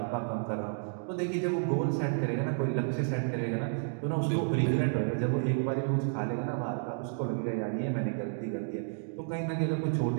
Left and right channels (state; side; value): silent; left; digital silence